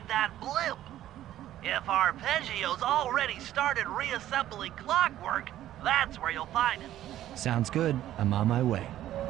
that blimp. If Arpeggio's already started reassembling clockwork, that's where you'll find it. Sounds good. I'm on my way.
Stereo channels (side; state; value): left; quieter; 12.9 dB